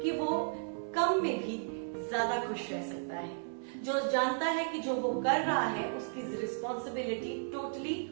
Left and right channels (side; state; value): left; silent; digital silence